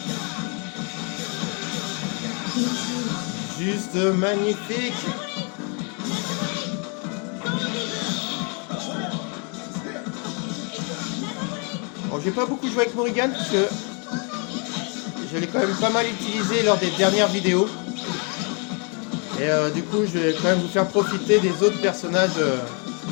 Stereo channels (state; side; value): quieter; right; 36.3 dB